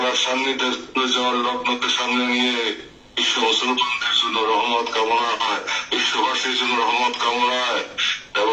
সান্নিধ্যে যাওয়ার লগ্নকে সামনে নিয়ে বিশ্ব মুসলমানদের জন্য রহমত কামনায়, বিশ্ববাসীর জন্য রহমত কামনায়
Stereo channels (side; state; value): both; identical; correlation 1.00